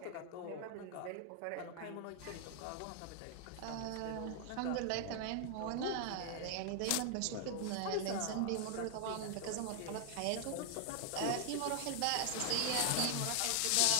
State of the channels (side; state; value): both; different; correlation -0.01